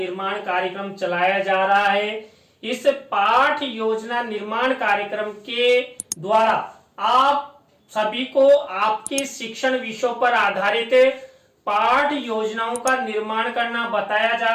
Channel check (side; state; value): both; identical; correlation 1.00